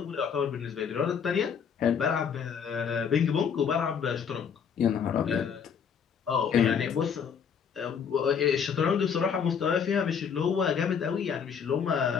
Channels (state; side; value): quieter; right; 7.1 dB